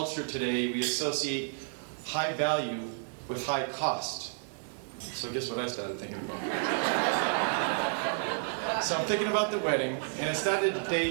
today we associate high value with high cost. So guess what I started thinking about? So I'm thinking about the wedding, and I started to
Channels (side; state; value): left; silent; 57 dB below the other